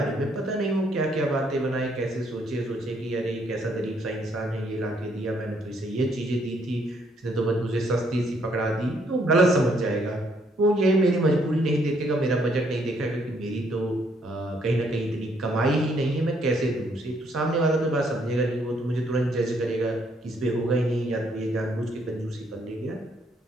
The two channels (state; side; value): normal; both; correlation 0.69